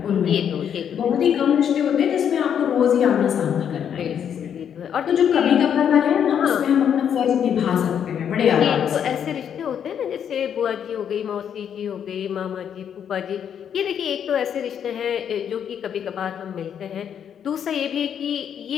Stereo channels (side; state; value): right; quieter; 8.6 dB